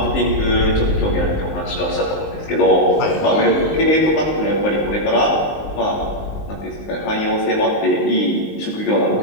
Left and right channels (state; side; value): late; right; 19 ms